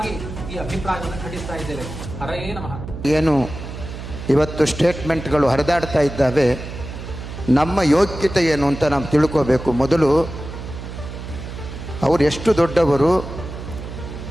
ಈ ಅಭಿಪ್ರಾಯವನ್ನು ಖಂಡಿಸ್ತಾ ಇದ್ದೇವೆ. ಹರಯೇ ನಮಃ. ಏನು ಇವತ್ತು ಸ್ಟೇಟ್ಮೆಂಟ್ಗಳು ಹರಿದಾಡ್ತಾ ಇದ್ದಾವೆ, ನಮ್ಮ ಯೋಗ್ಯತೆ ಏನು ಅಂತ ನಾವು ತಿಳ್ಕೋಬೇಕು. ಮೊದಲು ಅವರು ಎಷ್ಟು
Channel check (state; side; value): noise; right; hum, 10 dB below the sound